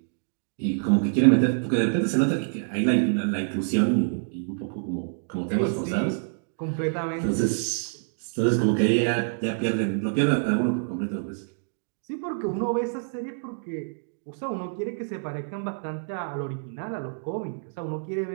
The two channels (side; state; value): left; silent; digital silence